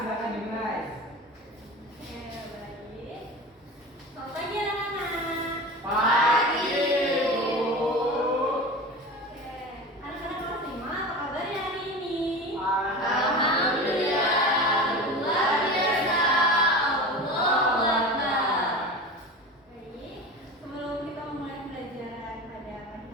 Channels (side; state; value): both; normal; correlation 0.31